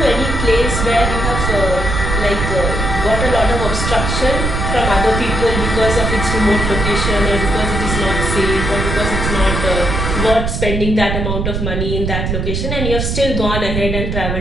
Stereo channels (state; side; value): noise; right; rumble, 2 dB below the sound